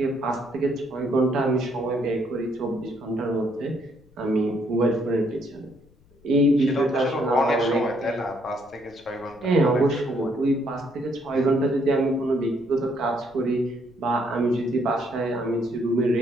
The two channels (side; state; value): left; noise; rumble, 29 dB below the sound